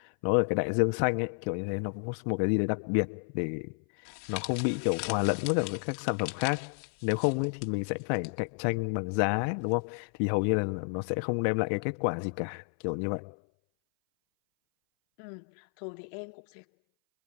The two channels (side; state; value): right; silent; 58 dB below the other